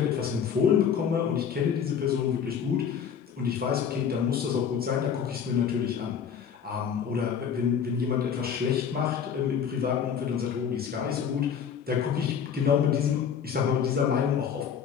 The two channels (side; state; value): right; quieter; 7.6 dB